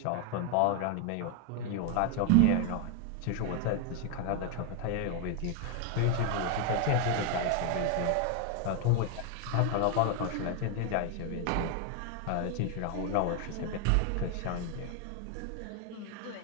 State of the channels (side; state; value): both; different; correlation 0.01